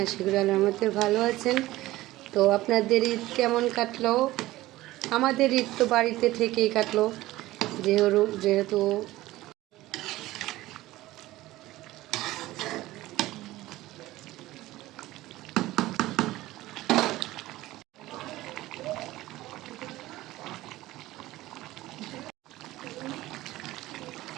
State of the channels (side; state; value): left; quieter; 17.1 dB